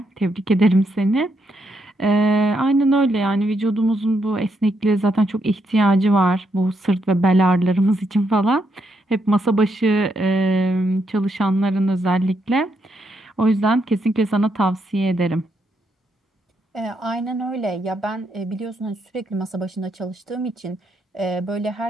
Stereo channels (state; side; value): normal; both; correlation 0.78